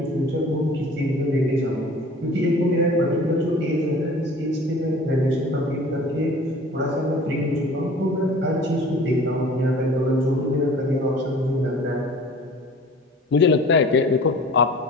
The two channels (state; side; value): normal; both; correlation 0.45